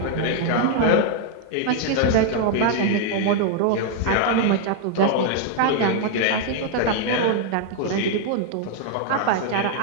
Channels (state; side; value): different; both; correlation 0.00